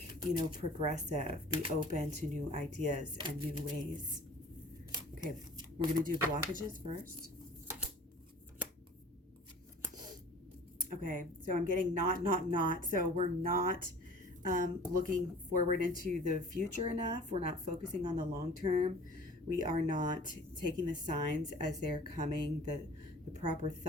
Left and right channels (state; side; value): normal; both; correlation 0.45